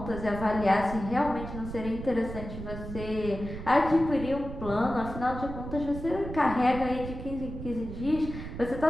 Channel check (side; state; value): right; noise; rumble, 9 dB below the sound